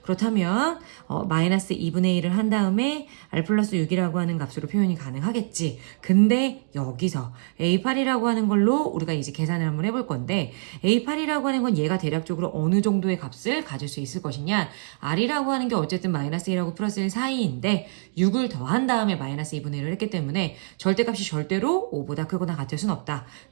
그렇다면 마이너스 2분의 1을 한 다음에 R 플러스 6이라고 하는 값으로 표현이 가능하겠지. 근데 여기서 A8이라고 하는 걸로 우리가 이제 계산을 한번 해볼 건데 A8이라고 하는 건 얘가 대략적으로 어느 정도의 값을 가질 수 있을 것이냐. R이라고 하는 게 어쨌든 마이너스 1하고 플러스 1 사이인데 6을 더한 다음에 마이너스 2분의 1을 했기 때문에 절대값이 절대로 5보다 크거나 같을 순 없다.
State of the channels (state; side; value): silent; left; digital silence